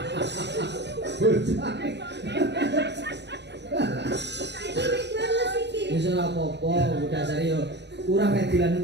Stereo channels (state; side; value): late; left; 0.50 ms